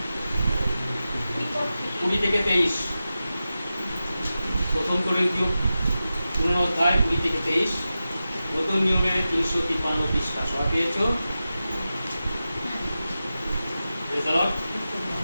20 থেকে 23। প্রথম করিন্থীয় পুনরুদ্ধার 20 থেকে 23 নতুন নিয়মের 353 পৃষ্ঠা। সবাই পেয়েছো? Praise the Lord।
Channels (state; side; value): inverted; both; correlation -0.93